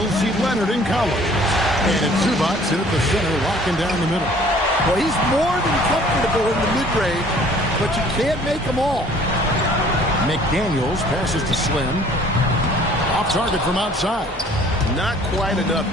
see Leonard and Collins. And it's Zubac in at the center, locking down the middle. Well, he's more than comfortable in the mid-range, but you can't make them all. McDaniels passes to Slim. Off target from outside. Not quite enough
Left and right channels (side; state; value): both; normal; correlation 0.54